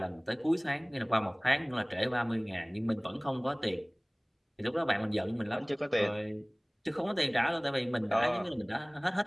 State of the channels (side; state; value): both; identical; correlation 1.00